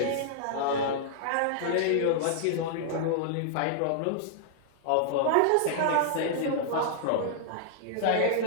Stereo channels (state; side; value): different; both; correlation -0.01